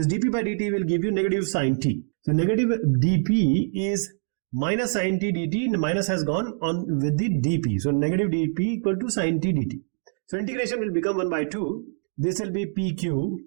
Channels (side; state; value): left; silent; digital silence